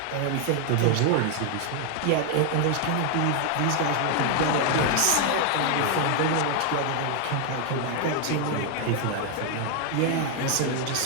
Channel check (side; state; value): both; different; correlation 0.00